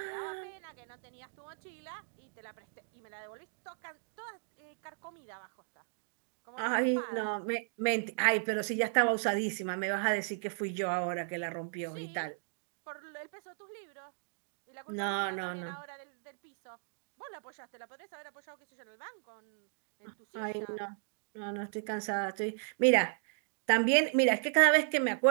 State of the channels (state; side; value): silent; left; digital silence